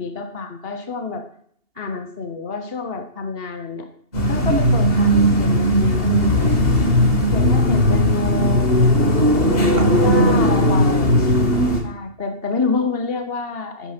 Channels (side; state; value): left; late; 2.8 ms